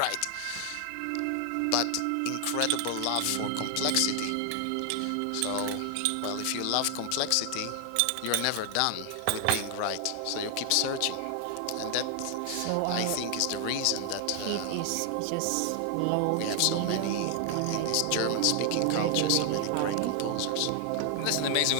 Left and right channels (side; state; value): both; different; correlation 0.00